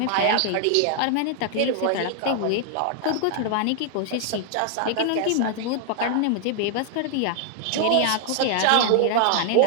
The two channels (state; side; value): different; both; correlation 0.00